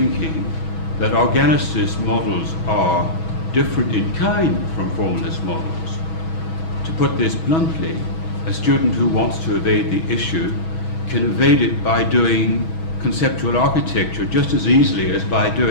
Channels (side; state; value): right; late; 6.2 ms